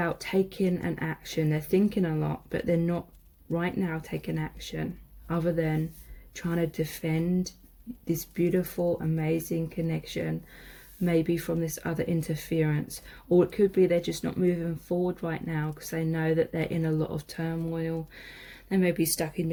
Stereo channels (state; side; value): identical; both; correlation 1.00